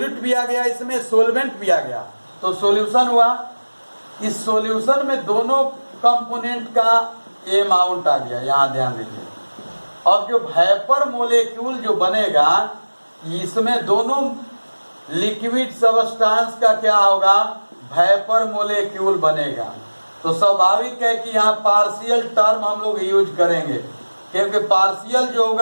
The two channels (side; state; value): both; inverted; correlation -1.00